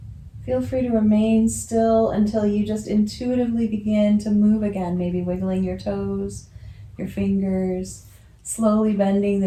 Feel free to remain still until you just intuitively begin to move again, maybe wiggling your toes, your fingers, slowly bending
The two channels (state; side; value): identical; both; correlation 1.00